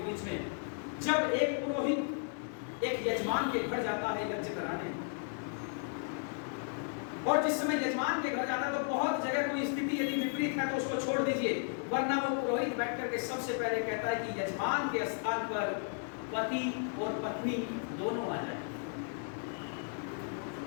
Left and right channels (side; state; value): right; silent; 55 dB below the other